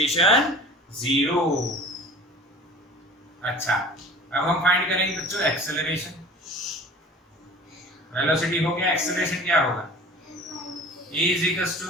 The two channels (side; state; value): both; normal; correlation 0.43